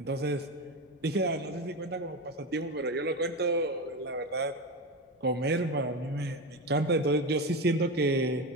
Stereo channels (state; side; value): normal; both; correlation 0.19